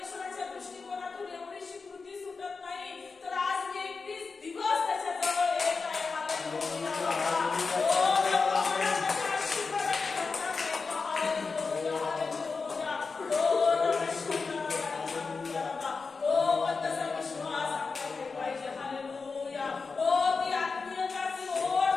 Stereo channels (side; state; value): right; quieter; 4.6 dB